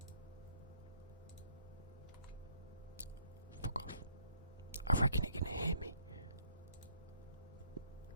Fuck off. I reckon it can hear me.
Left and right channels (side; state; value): both; inverted; correlation -0.65